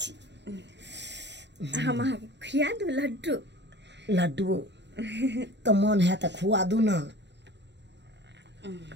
हम अहाँ के खिया दू लड्डू। लड्डू तो मन है तो खुआ दू ना।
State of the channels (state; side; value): late; left; 0.51 ms